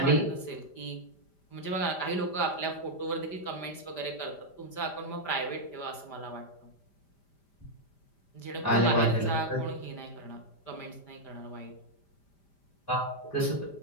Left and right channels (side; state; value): right; late; 5.0 ms